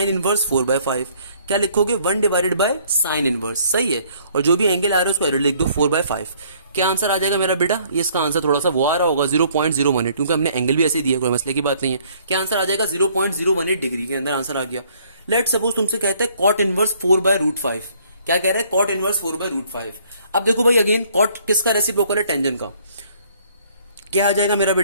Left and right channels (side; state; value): both; inverted; correlation -0.61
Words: इनवर्स 4/5। क्या लिखोगे, 1 डिवाइडेड बाय साइन इनवर्स, सही है। और जो भी एंगल आ रहा है उसको एरो लिख दो 4/5। क्या आंसर आ जाएगा मेरा बेटा, ये इसका आंसर थोड़ा सा वो आ रहा होगा 0.018, क्योंकि हमने एंगल भी ऐसे दिया, कोई मसले की बात नहीं है। क्या आंसर आ जाएगा, 0.018 डिग्री के अंदर आंसर आ गया। लेट सपोज तुमसे कहते हैं कॉट इनवर्स 4/√5। क्या कह रहा है, कॉट इनवर्स 4/√5। अब देखो भाई अगेन कॉट किसका रेसिप्रोकल है, टेंजेंट का। क्या आ जाएगा मेरा